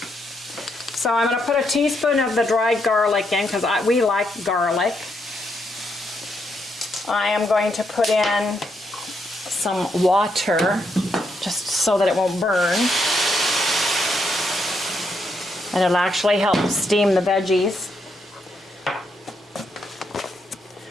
So I'm going to put a teaspoon of the dried garlic in because we like garlic. I am going to put in some water just so that it won't burn. And it'll actually help steam the veggies.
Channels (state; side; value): normal; both; correlation 0.78